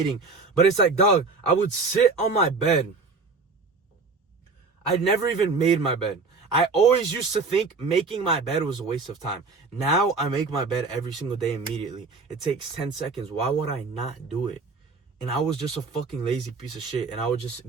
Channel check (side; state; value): left; quieter; 4.3 dB